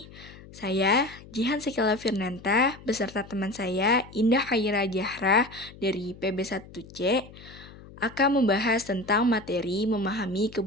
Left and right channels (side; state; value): left; noise; hum, 19 dB below the sound